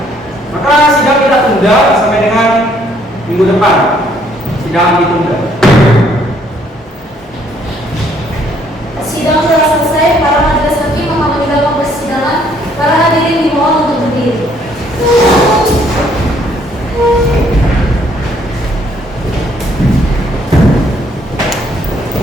maka sidang kita tunda sampai dengan minggu depan. Sidang ditunda. Sidang telah selesai. Para majelis hakim akan meninggalkan persidangan. Para hadirin dimohon untuk berdiri.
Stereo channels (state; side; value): normal; both; correlation 0.65